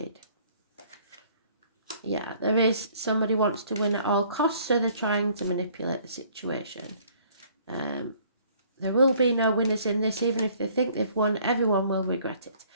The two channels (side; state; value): both; inverted; correlation -0.59